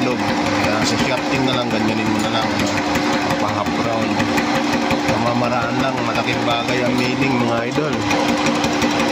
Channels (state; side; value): identical; both; correlation 1.00